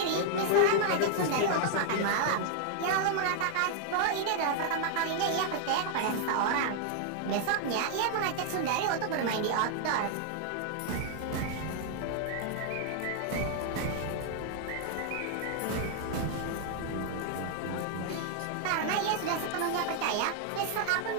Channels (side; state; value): both; different; correlation 0.00